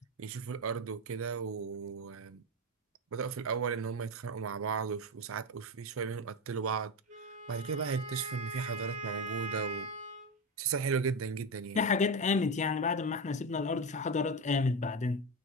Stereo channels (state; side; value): normal; both; correlation 0.16